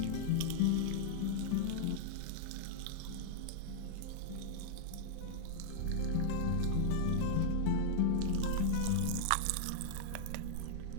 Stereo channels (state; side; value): different; both; correlation -0.01